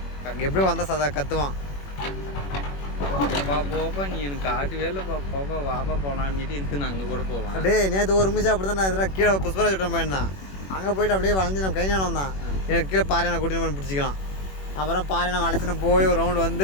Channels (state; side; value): late; right; 21 ms